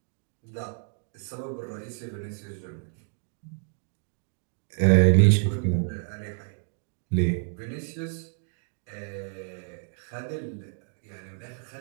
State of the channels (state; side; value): silent; left; 59 dB below the other